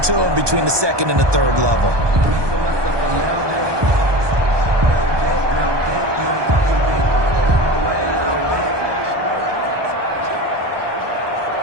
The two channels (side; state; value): left; late; 1.2 ms